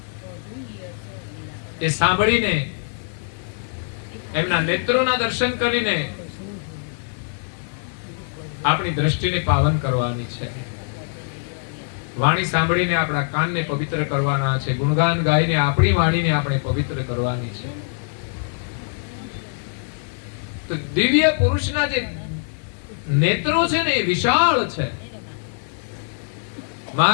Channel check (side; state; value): right; silent; 64 dB below the other